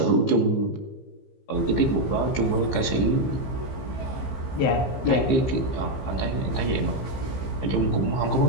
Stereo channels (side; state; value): right; late; 15 ms